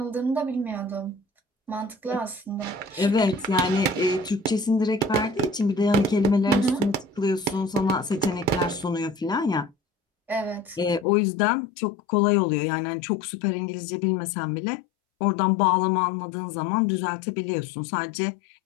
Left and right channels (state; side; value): drops out; right; at 11.1 s